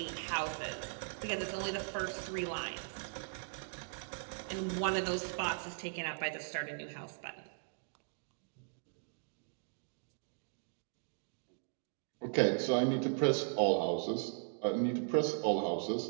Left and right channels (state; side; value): silent; left; digital silence